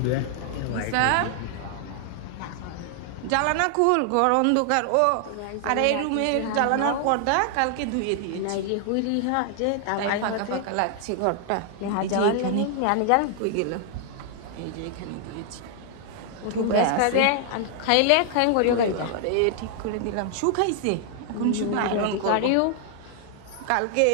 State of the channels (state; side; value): different; both; correlation 0.00